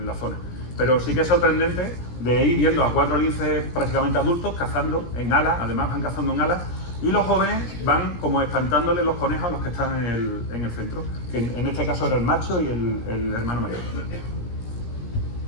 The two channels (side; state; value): right; late; 17 ms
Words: la zona. Pero sí que es sorprendente de ir viendo a 4 linces prácticamente adultos cazando en alas, además van cazando en alas, y los jóvenes van como espantándole los conejos a los que están en el centro, que en este caso era el macho y el hermano mayor.